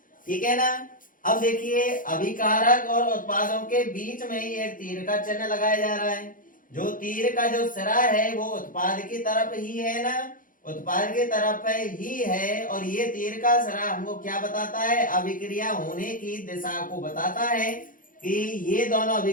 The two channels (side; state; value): right; late; 0.39 ms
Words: ठीक है ना। अब देखिए अभिकारक और उत्पादों के बीच में ही एक तीर का चिन्ह लगाया जा रहा है। जो तीर का जो सिरा है वो उत्पाद की तरफ ही है ना, उत्पाद की तरफ ही है। और ये तीर का सिरा हमको क्या बताता है, अभिक्रिया होने की दिशा को बताता है कि ये दोनों